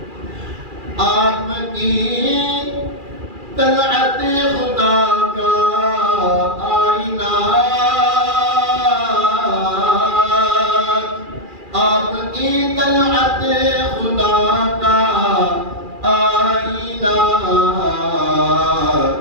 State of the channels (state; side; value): late; left; 2.4 ms